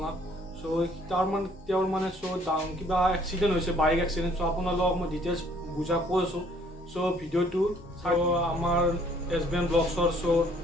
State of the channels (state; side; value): normal; both; correlation 0.61